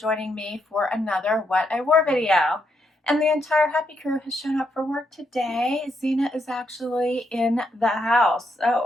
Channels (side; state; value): both; normal; correlation 0.78